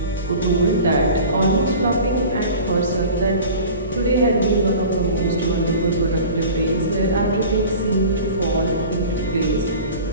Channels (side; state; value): both; inverted; correlation -0.40